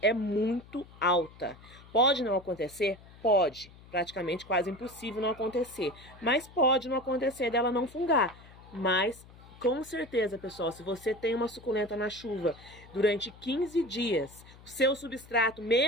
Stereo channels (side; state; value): left; noise; hum, 21 dB below the sound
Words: é muito alta. Pode não acontecer? Pode. Praticamente quase impossível não acontecer. Mas pode não acontecer dela não fungar. Mas, com certeza, pessoal, se você tem uma suculenta na chuva durante 15 dias, o seu substrato,